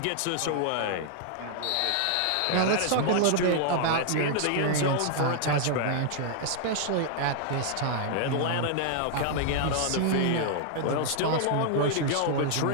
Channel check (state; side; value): different; both; correlation -0.01